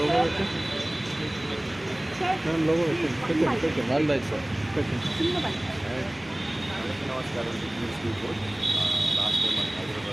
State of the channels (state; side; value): noise; right; hum, 26 dB below the sound